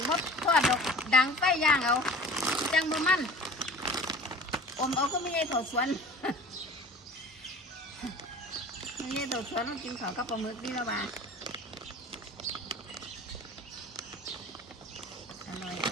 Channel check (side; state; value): both; normal; correlation 0.42